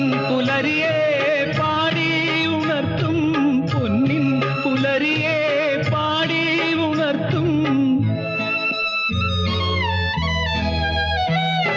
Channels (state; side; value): identical; both; correlation 1.00